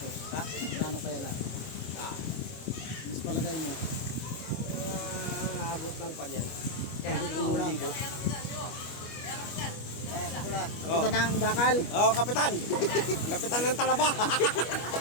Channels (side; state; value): right; late; 25 ms